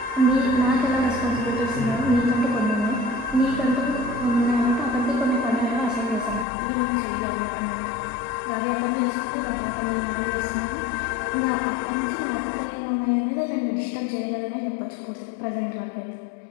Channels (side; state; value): right; drops out; at 6.5 s